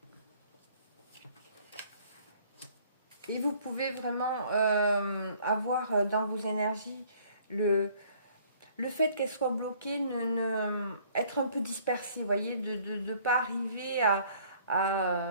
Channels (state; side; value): inverted; both; correlation -0.58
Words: Et vous pouvez vraiment avoir dans vos énergies le fait qu'elles soient bloquées, être un peu dispersées, vous voyez, de ne pas arriver